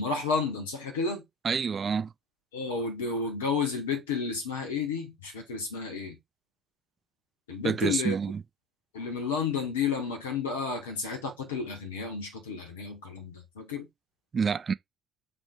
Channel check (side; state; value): both; normal; correlation 0.33